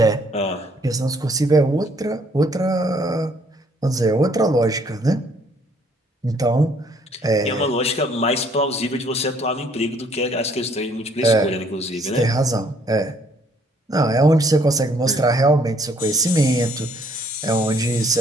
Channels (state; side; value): normal; both; correlation 0.64